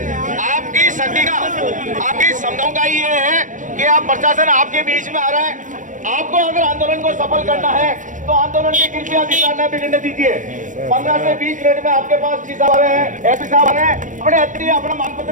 आपकी शक्ति का, आपकी क्षमताओं का ही ये है कि आप प्रशासन आपके बीच में आ रहा है। आपको अगर आंदोलन को सफल करना है तो आंदोलन की कृपया दिशा न बिगड़ने दीजिए। 15 से 20 मिनट में आपके पास डी साहब आ रहे हैं, एसपी साहब आ रहे हैं, अपने अतिथि अपना मांग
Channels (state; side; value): late; left; 0.37 ms